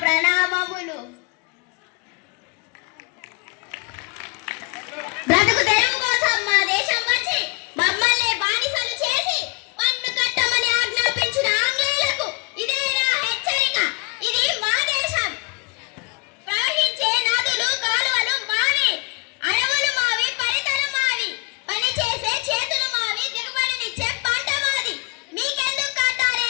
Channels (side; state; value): right; quieter; 32.2 dB